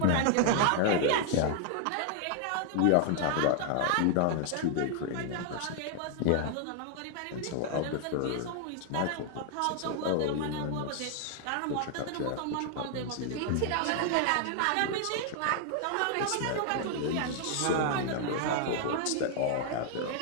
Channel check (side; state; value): both; different; correlation 0.00